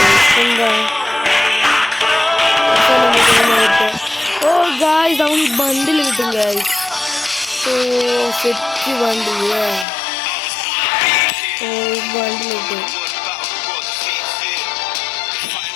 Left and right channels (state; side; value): drops out; right; at 9.9 s